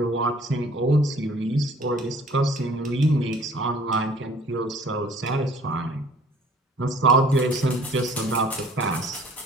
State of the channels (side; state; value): both; normal; correlation 0.54